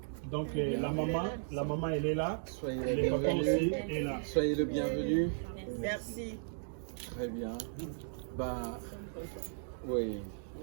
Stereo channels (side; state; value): left; silent; digital silence